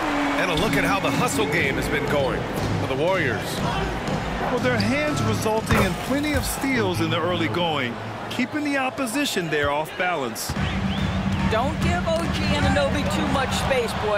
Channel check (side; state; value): both; identical; correlation 1.00